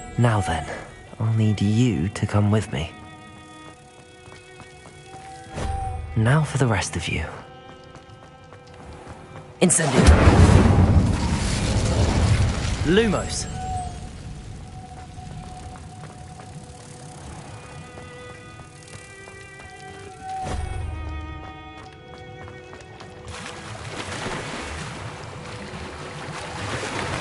Now then, I'll need you to come with me. Now for the rest of you. Incendio! Lumos!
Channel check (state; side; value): identical; both; correlation 1.00